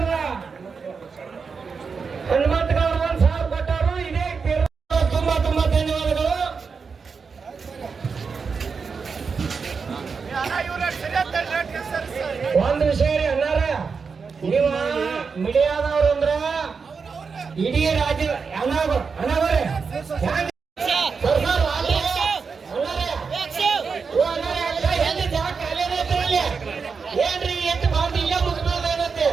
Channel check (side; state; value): left; quieter; 5.3 dB